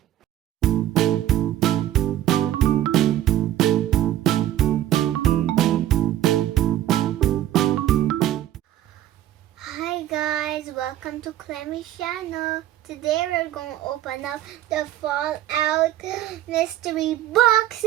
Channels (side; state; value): left; quieter; 12.9 dB